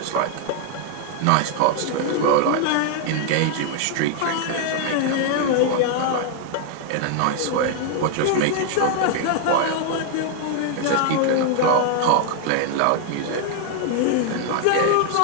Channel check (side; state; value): both; different; correlation 0.00